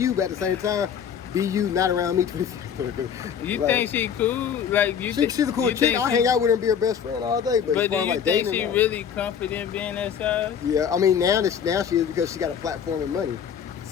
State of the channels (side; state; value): right; quieter; 8.0 dB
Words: but at the same time, be you, not around me 24/7. You think she cool? Like she's a cool chick. I hang out with her and be her best friend all day. But do you like think she really confident being that size? Yeah, I mean now she is, because she got a platform and money.